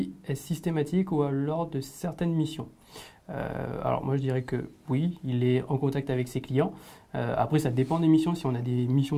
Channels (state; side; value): identical; both; correlation 1.00